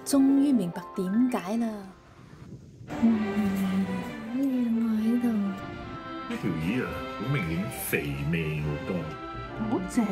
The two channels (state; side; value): identical; both; correlation 1.00